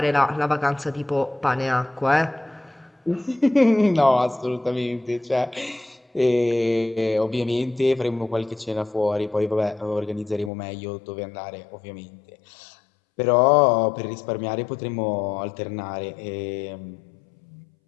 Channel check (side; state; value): right; drops out; at 10.5 s